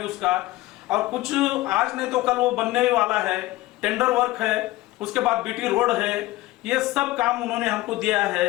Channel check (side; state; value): right; quieter; 18.3 dB